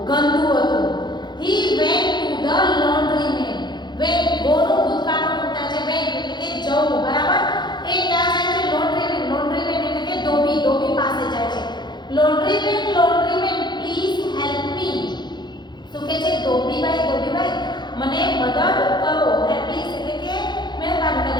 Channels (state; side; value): late; right; 0.21 ms